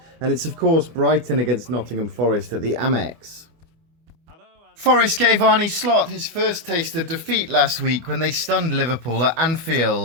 and it's of course Brighton against Nottingham Forest at the Amex. Forest gave Arne Slot his first taste of defeat last week when they stunned Liverpool at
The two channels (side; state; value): left; late; 25 ms